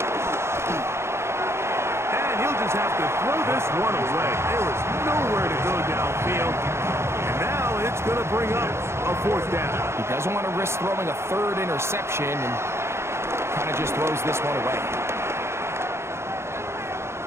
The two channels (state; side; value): late; left; 0.13 ms